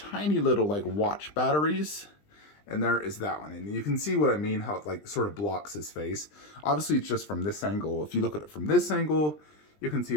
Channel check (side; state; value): right; late; 20 ms